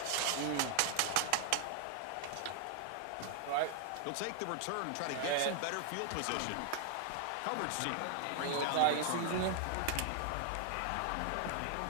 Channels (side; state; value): both; different; correlation 0.00